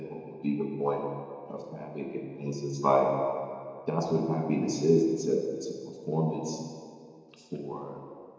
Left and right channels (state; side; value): identical; both; correlation 1.00